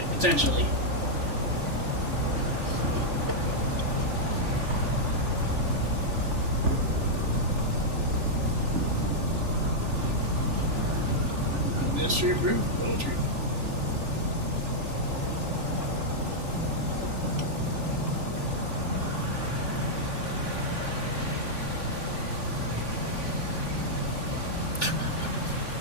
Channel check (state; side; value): late; left; 3.4 ms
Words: potentially. Ministry approved poetry.